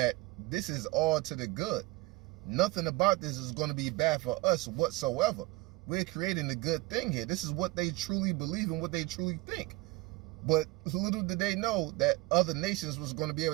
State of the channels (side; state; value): left; quieter; 22.1 dB